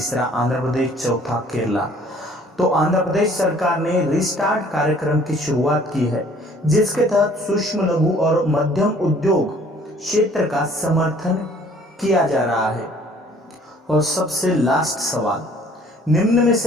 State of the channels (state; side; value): normal; both; correlation 0.56